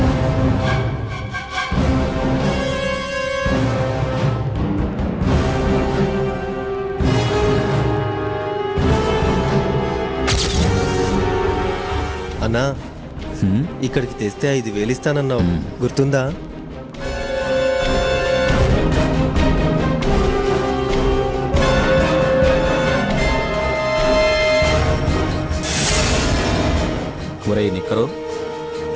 అన్నా, ఇక్కడికి తెస్తే 5,000 ఇస్తానన్నావు, గుర్తుందా? ఒరే నిక్కరు,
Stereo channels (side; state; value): both; identical; correlation 1.00